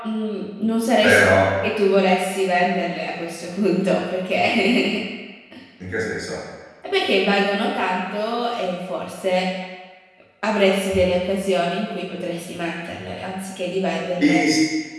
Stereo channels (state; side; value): identical; both; correlation 1.00